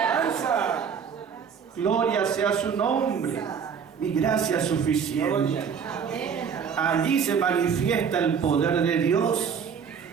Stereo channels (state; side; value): quieter; left; 6.8 dB